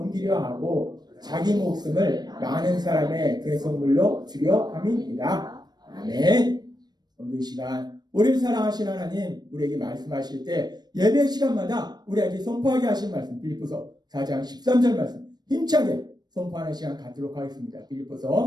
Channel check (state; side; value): late; left; 0.20 ms